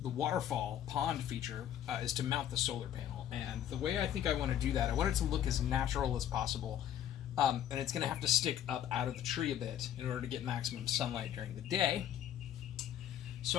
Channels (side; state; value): right; quieter; 10.6 dB